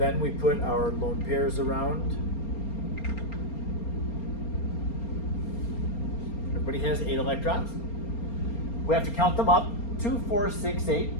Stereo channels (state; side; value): late; right; 4.3 ms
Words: we put our lone pairs around. Everybody has 8 electrons. We have to count them up. 2, 4, 6,